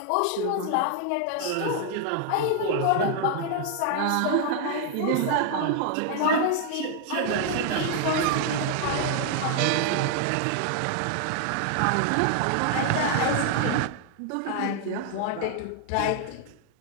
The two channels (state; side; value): different; both; correlation 0.00